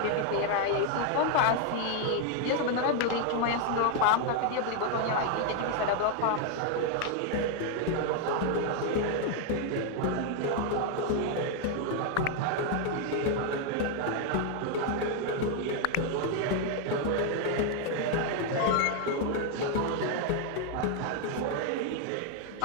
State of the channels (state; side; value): different; both; correlation 0.01